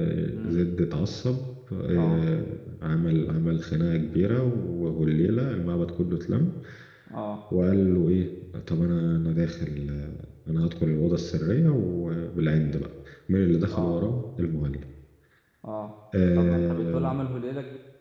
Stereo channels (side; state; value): both; identical; correlation 1.00